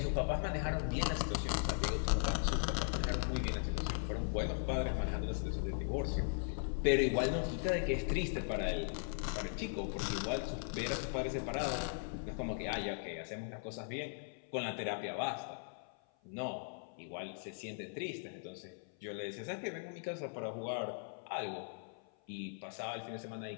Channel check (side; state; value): right; silent; 52 dB below the other